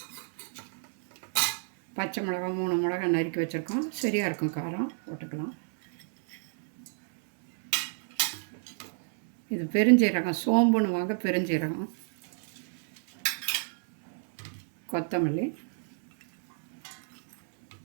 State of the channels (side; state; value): left; silent; 59 dB below the other